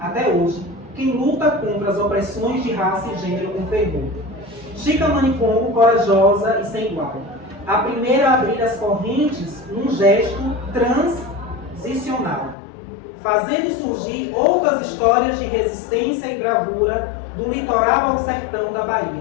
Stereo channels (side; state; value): right; drops out; at 12.6 s